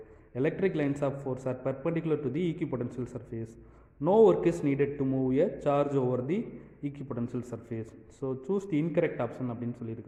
Electric lines of force are perpendicular to the equipotential surface. No work is needed to move a charge over the equipotential surface. So choose the incorrect option அப்படின்னு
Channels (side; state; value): both; identical; correlation 1.00